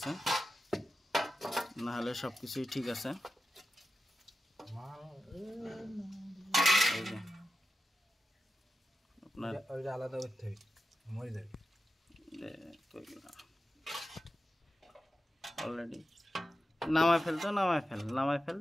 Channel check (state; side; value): normal; both; correlation 0.91